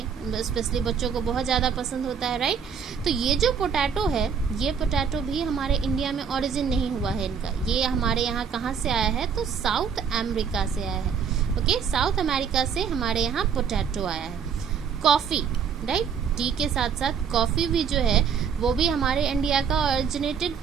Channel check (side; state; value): left; quieter; 6.8 dB